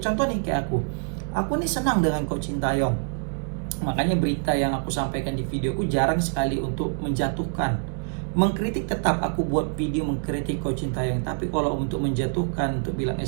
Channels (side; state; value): left; silent; digital silence